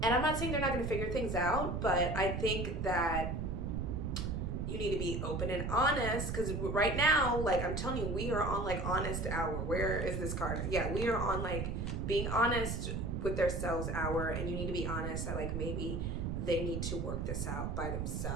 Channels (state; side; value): noise; right; rumble, 2 dB below the sound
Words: And I'm not saying they're not gonna figure things out, but I think that you need to be open and honest, because right now, like, I'm telling you, we are on, like, honest hour. Where is this card? Yeah, we are on, like, being honest with themselves hour, and you need to be honest that, like, maybe they need to work this out by